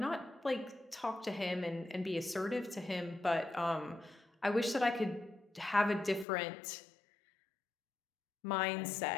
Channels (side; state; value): right; drops out; at 6.2 s